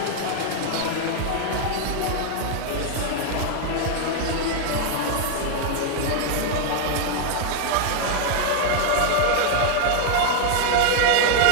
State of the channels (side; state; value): both; different; correlation 0.00